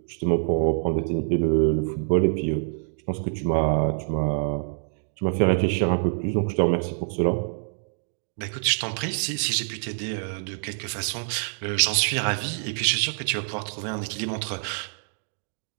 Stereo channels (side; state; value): left; silent; digital silence